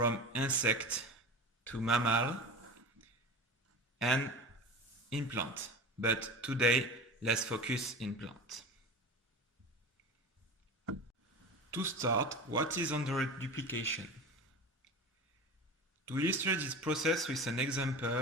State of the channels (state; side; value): normal; both; correlation 0.31